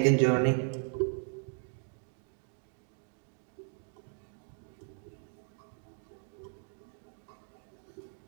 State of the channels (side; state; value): left; silent; 53 dB below the other